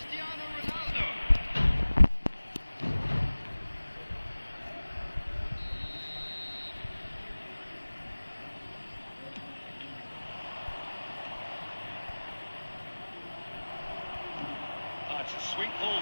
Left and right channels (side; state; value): both; inverted; correlation -1.00